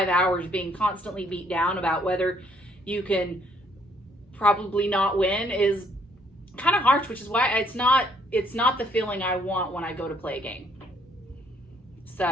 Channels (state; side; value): normal; both; correlation 0.66